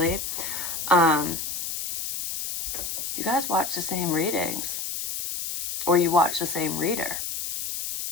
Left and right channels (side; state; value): left; noise; hiss, 4 dB below the sound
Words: you guys watch the same readings, or you watch the same reader,